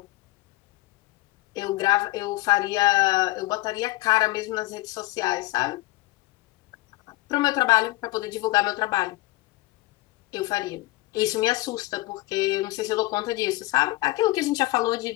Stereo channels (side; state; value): right; quieter; 19.4 dB